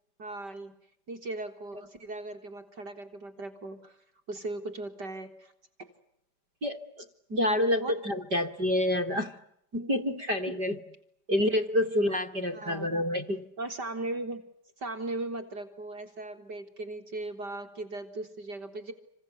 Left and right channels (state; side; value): late; left; 5.0 ms